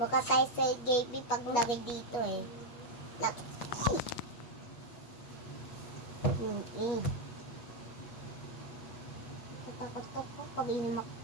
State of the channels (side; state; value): right; late; 8.4 ms